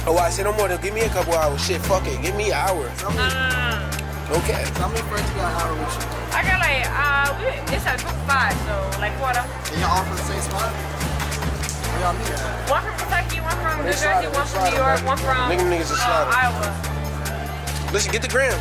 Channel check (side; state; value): both; identical; correlation 1.00